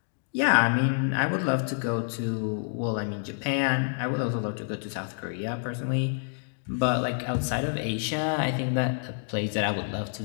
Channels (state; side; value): silent; right; digital silence